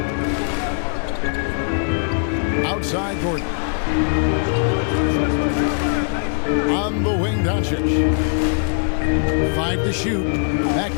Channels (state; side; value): silent; right; digital silence